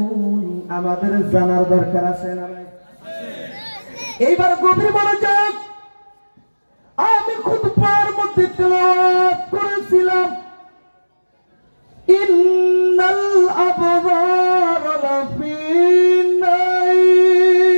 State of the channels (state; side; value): inverted; both; correlation -1.00